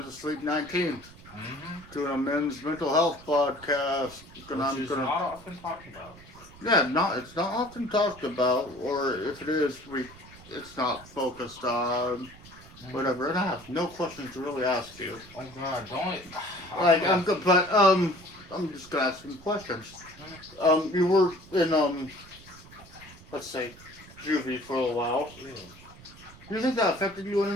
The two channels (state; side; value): noise; right; rumble, 20 dB below the sound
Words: asleep 19, Mm-hmm. doing a men's mental health podcast. Which is not often talked about. Yeah, it's not often talked about, or if it is, it's not focused on, Mm-hmm. whatever. And I have no questions to really ask you. Oh God, don't. I Like, feel. I'm good, but, I'm just gonna ask some questions. Mm, You were in, let's say, juvie for a while. yeah. Do you think that affected you in